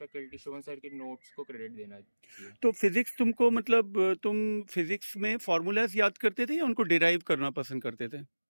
शुभम सर के नोट्स को क्रेडिट देना चाहिए। तो फिजिक्स तुमको, मतलब तुम फिजिक्स में फार्मूलाज याद करते थे या उनको डिराइव करना पसंद करते थे?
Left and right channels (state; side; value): inverted; both; correlation -1.00